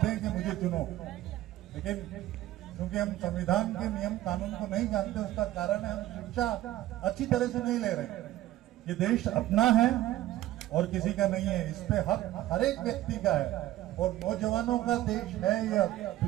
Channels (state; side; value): quieter; left; 15.0 dB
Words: हैं कि मुझे चुनो, लेकिन क्योंकि हम संविधान के नियम कानून को नहीं जानते, उसका कारण है हम शिक्षा अच्छी तरह से नहीं ले रहे। ये देश अपना है और किसी का नहीं है, इस पे हक हर एक व्यक्ति का है और नौजवानों का देश है ये